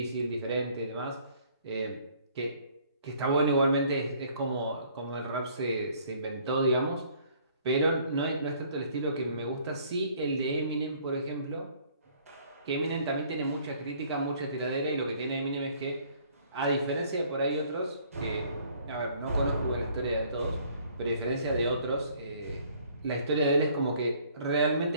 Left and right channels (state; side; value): inverted; both; correlation -0.59